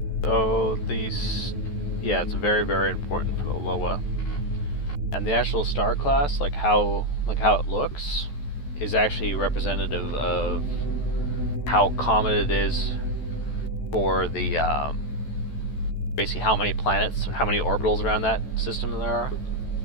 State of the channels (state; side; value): late; right; 14 ms